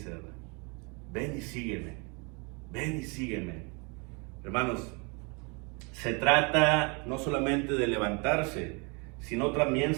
¿verdad? Ven y sígueme, ven y sígueme. Hermanos, se trata no solamente de levantarse, sino también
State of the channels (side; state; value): left; quieter; 31.7 dB